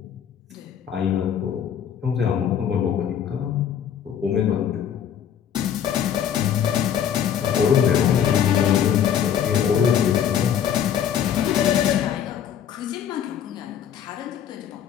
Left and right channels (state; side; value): quieter; right; 9.0 dB